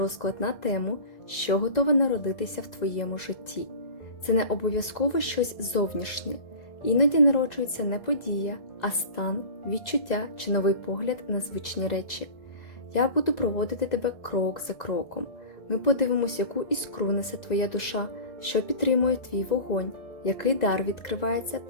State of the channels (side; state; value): right; late; 1.9 ms